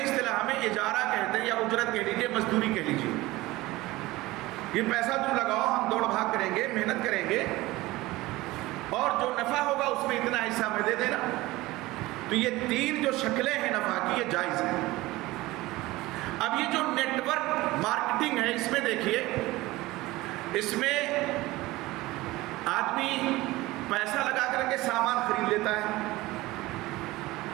اصطلاح میں اجارہ کہتے ہیں، یا اجرت کہہ لیجیے، مزدوری کہہ لیجیے. یہ پیسہ تم لگاؤ، ہم دوڑ بھاگ کریں گے، محنت کریں گے، اور جو نفع ہوگا اس میں اتنا حصہ ہمیں دے دینا. تو یہ 3 جو شکلیں ہیں نفع کی، یہ جائز ہیں. اب یہ جو نیٹ ورک مارکیٹنگ ہے، اس میں دیکھیے، اس میں آدمی پیسہ لگا کر کے سامان خرید لیتا ہے.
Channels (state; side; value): quieter; left; 19.3 dB